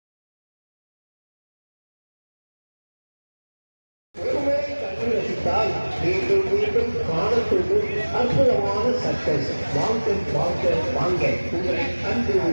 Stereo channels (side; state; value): both; inverted; correlation -1.00